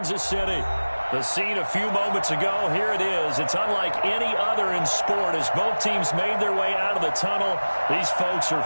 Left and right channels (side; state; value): both; inverted; correlation -1.00